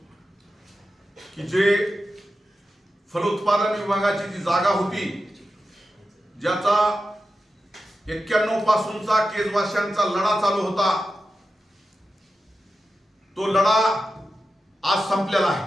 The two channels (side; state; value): both; normal; correlation 0.91